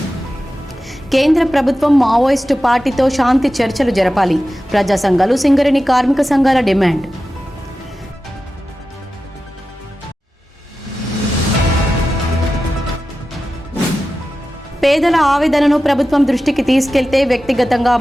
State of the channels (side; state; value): both; normal; correlation 0.93